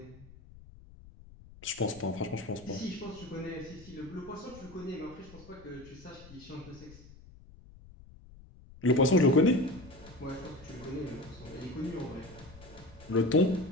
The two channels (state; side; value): noise; left; rumble, 20 dB below the sound